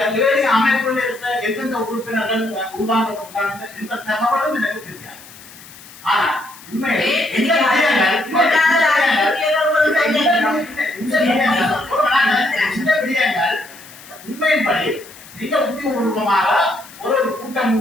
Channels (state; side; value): noise; left; hiss, 20 dB below the sound